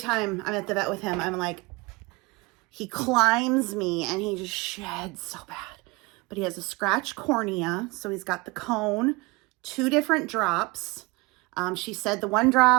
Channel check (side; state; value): left; quieter; 24.7 dB